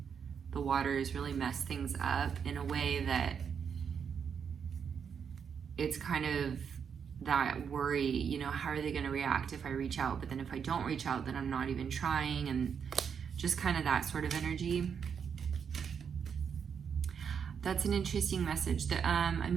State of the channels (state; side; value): quieter; left; 7.0 dB